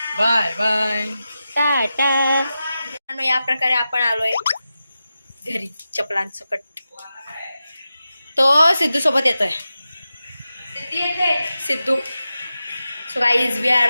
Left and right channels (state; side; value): inverted; both; correlation -0.92